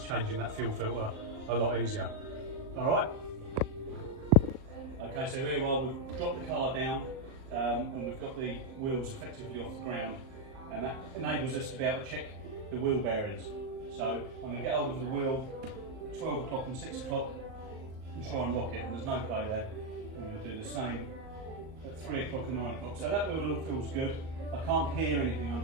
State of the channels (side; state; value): left; late; 38 ms